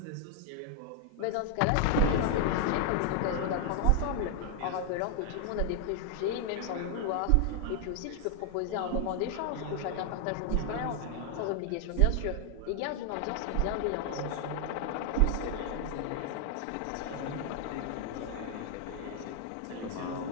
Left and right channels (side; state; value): both; different; correlation 0.00